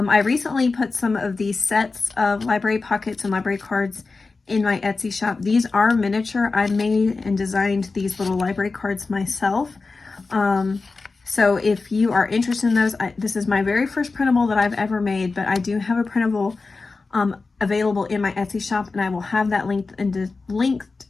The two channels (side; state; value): right; quieter; 4.0 dB